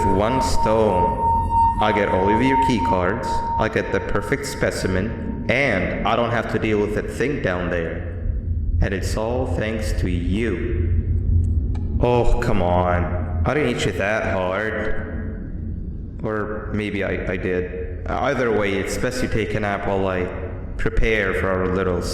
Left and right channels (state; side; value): identical; both; correlation 1.00